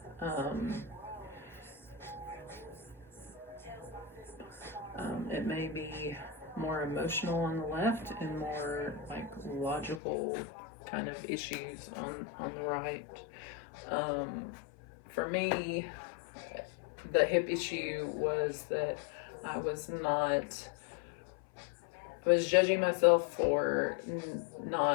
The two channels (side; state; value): right; drops out; at 10.0 s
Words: It may be more emotional on the left and more like logical kind of issues on the right. For me, the hip issue was that I was judging myself for